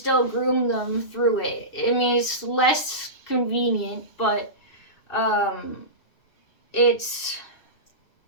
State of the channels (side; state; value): right; late; 2.6 ms